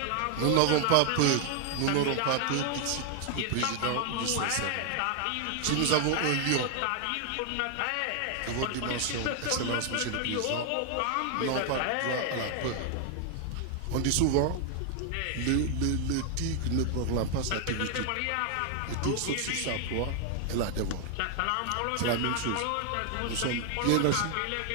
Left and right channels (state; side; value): different; both; correlation 0.00